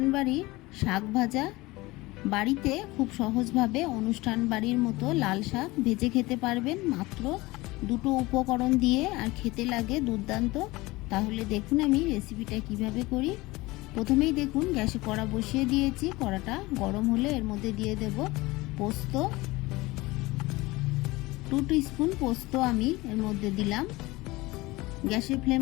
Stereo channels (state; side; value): quieter; right; 21.0 dB